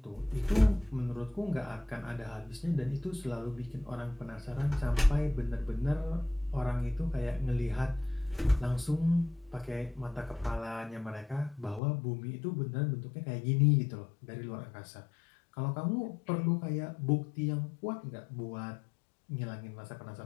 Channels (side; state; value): right; drops out; at 11.8 s